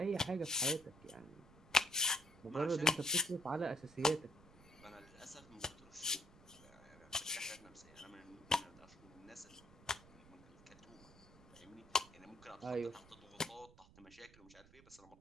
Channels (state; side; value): noise; right; rumble, 22 dB below the sound